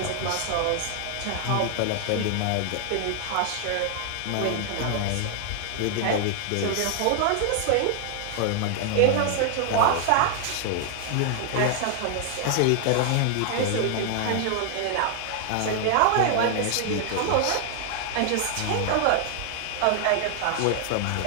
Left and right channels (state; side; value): different; both; correlation 0.00